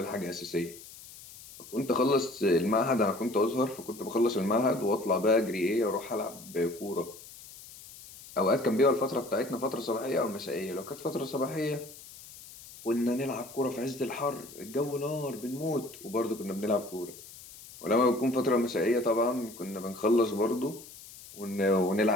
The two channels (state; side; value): noise; left; hiss, 17 dB below the sound